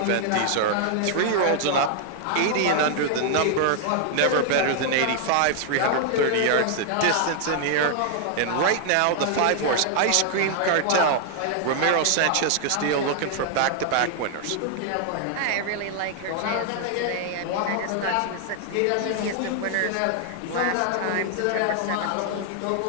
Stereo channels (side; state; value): both; different; correlation 0.00